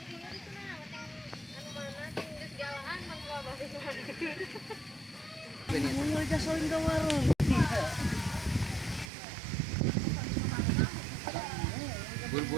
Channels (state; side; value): drops out; left; at 9.1 s